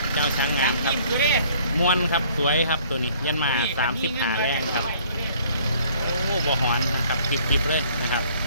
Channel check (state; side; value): inverted; both; correlation -0.58